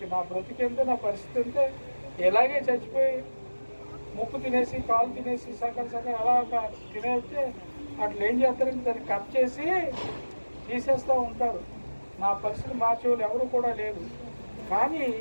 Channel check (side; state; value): both; inverted; correlation -1.00